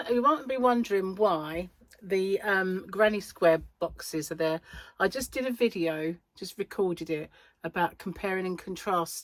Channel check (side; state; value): both; identical; correlation 1.00